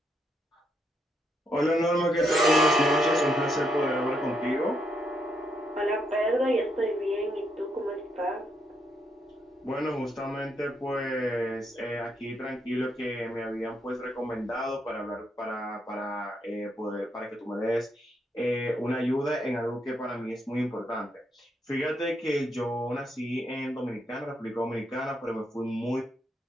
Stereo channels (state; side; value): normal; both; correlation 0.77